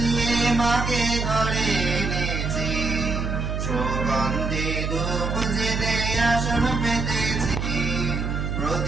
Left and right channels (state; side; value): noise; right; hum, 2 dB below the sound